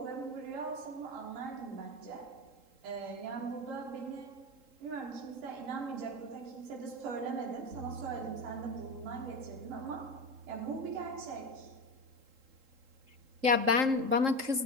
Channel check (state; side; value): late; left; 3.8 ms